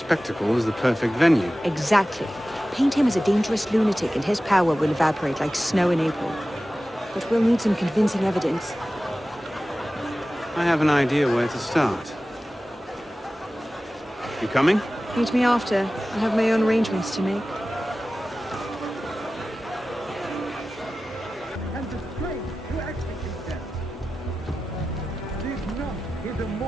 is the perfect venue. Exactly. Paint him as a dangerous lunatic and his power will evaporate like snow in April. But we'll need some convincing evidence. I have an idea where to start. You coming? Meet me after. I have my own arrangements to make.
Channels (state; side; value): normal; both; correlation 0.95